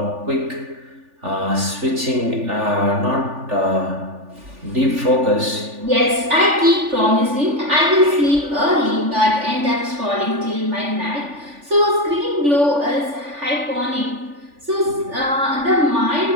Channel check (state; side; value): late; left; 3.4 ms